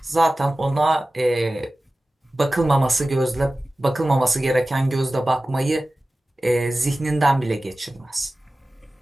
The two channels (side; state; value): both; normal; correlation 0.96